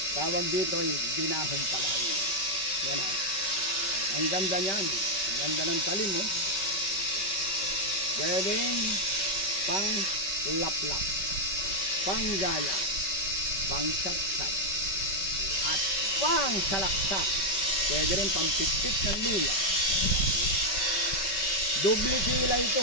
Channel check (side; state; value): right; late; 5.2 ms